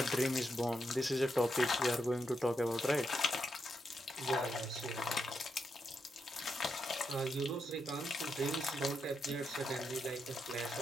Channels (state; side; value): normal; both; correlation 0.83